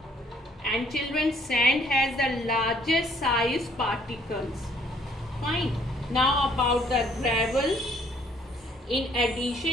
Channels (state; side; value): normal; both; correlation 0.63